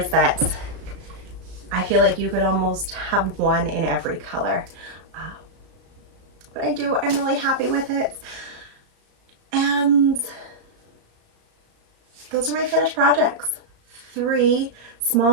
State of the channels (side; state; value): left; late; 35 ms